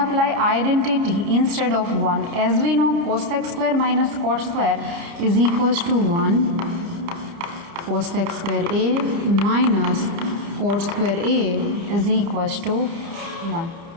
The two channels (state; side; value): late; left; 30 ms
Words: identity instead of 1. As we know, cosec square minus cot square is equals to 1. Cosec square A minus cot square A is equals to 1.